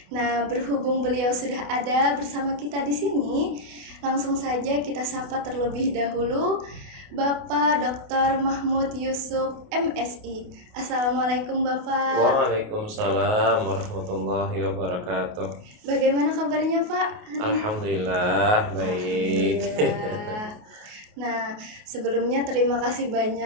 Nah, berhubung beliau sudah ada bersama kita di sini, langsung saja kita sapa terlebih dahulu Bapak Dr. Mahmud Yusuf MSI. Assalamualaikum Bapak. Waalaikumsalam warahmatullahi wabarakatuh. Bagaimana kabarnya Pak? Alhamdulillah baik. Alhamdulillah. Nah, sebelumnya terima kasih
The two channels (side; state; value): left; late; 28 ms